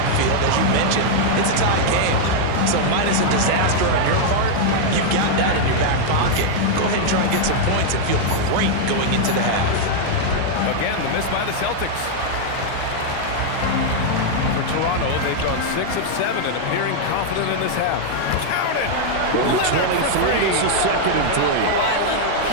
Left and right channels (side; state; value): both; different; correlation -0.01